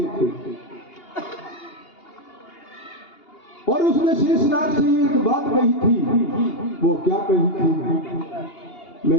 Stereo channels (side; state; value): right; late; 2.8 ms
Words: थे। और उसने शेषनाग से एक बात कही थी। वो क्या कही थी?